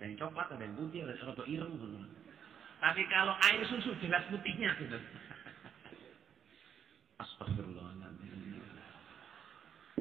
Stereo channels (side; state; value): left; quieter; 8.3 dB